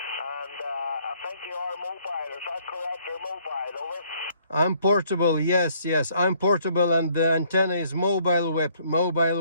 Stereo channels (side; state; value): both; inverted; correlation -0.64